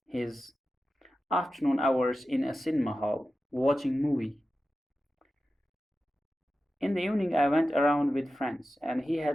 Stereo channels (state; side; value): normal; both; correlation 0.93